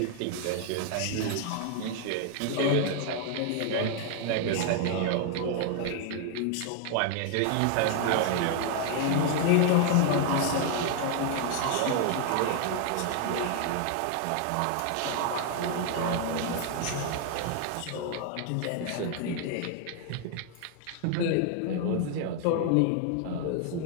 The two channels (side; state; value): both; different; correlation 0.00